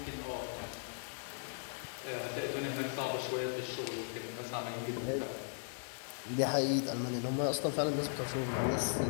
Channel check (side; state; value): right; silent; digital silence